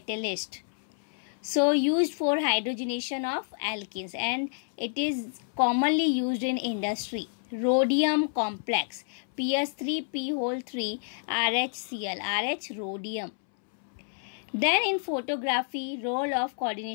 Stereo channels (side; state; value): right; silent; 59 dB below the other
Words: So used for hydrogenation of alkenes and it is commonly used in industry. Rhodium complex, PS3P3RHCl, RH rhodium. Then in photography, role of